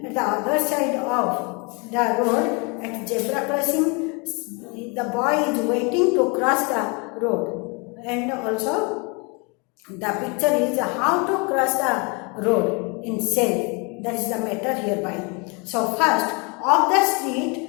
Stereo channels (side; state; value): right; quieter; 31.4 dB